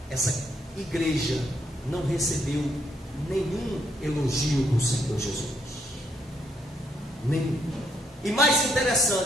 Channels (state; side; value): normal; both; correlation 0.73